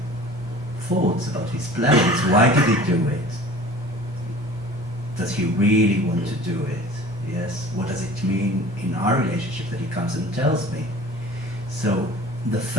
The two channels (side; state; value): both; normal; correlation 0.44